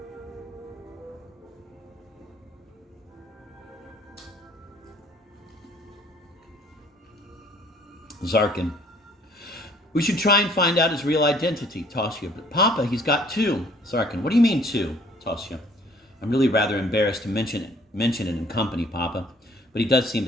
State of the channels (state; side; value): normal; both; correlation 0.58